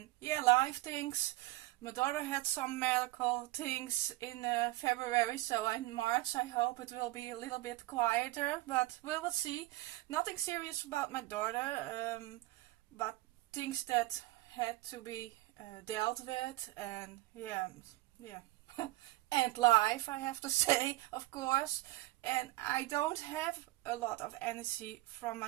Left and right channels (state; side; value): quieter; left; 18.5 dB